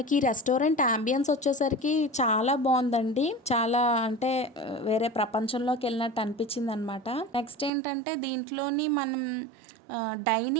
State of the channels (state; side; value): drops out; left; at 7.7 s